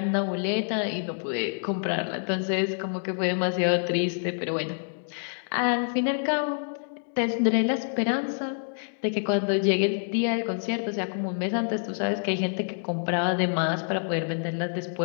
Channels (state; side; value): silent; right; digital silence